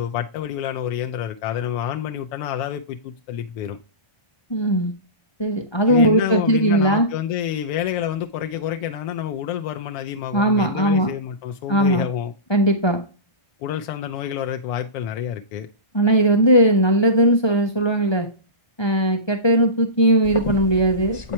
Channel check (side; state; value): right; late; 1.2 ms